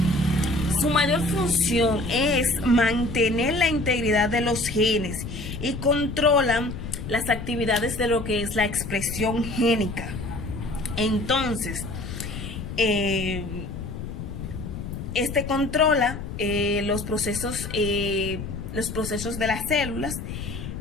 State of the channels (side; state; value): left; noise; rumble, 7 dB below the sound